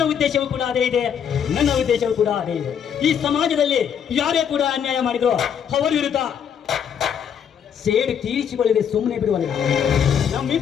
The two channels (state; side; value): quieter; right; 8.1 dB